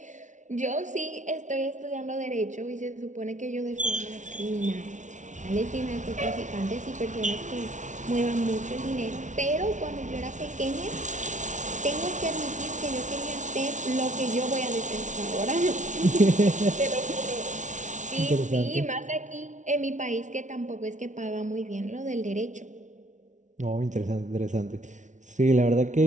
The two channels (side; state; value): left; late; 0.36 ms